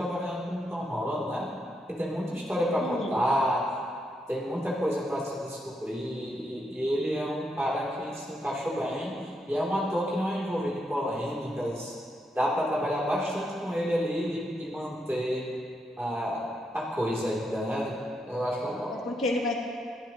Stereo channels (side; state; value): both; normal; correlation 0.80